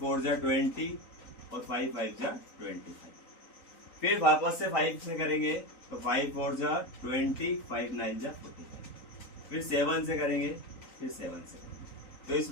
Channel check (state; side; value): late; right; 3.9 ms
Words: जा 20 और 5 5 जा 25। फिर वापस से 5 से करेंगे तो 5 4 जा 20, 5 9 जा 45। फिर 7 से करेंगे, फिर 7 से करेंगे। तो इस